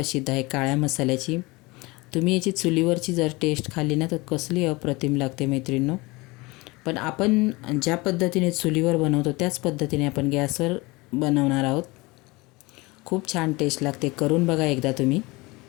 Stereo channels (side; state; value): right; quieter; 23.7 dB